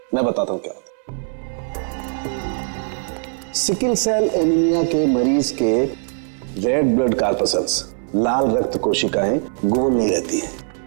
मैं बताता हूं क्या होता है। सिकल सेल एनीमिया के मरीज के रेड ब्लड कार्पसल्स, लाल रक्त कोशिकाएं गोल नहीं रहती हैं,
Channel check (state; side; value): silent; left; 60 dB below the other